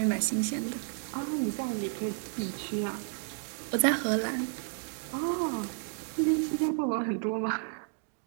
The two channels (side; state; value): left; silent; digital silence